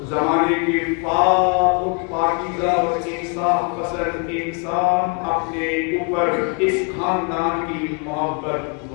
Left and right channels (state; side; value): quieter; right; 36.2 dB